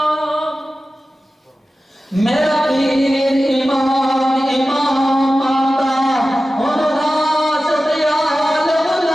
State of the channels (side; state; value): both; normal; correlation 0.95